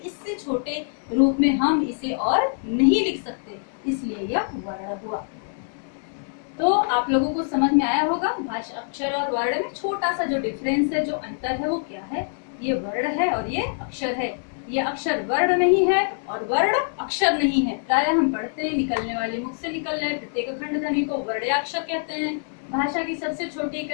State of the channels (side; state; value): right; silent; digital silence